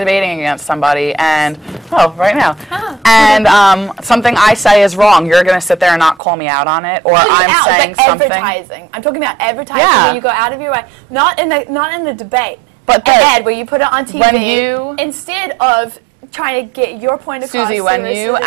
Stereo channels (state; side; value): drops out; left; at 6.2 s